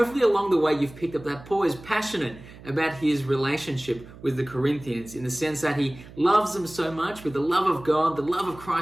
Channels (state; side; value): noise; right; hum, 18 dB below the sound